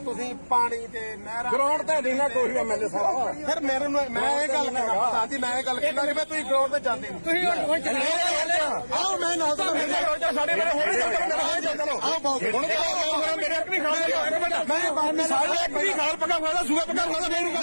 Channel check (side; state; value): both; inverted; correlation -1.00